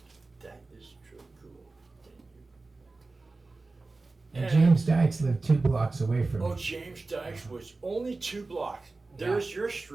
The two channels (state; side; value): quieter; left; 3.5 dB